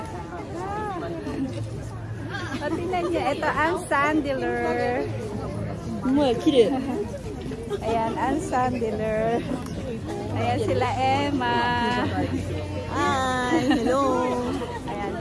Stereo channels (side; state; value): both; identical; correlation 1.00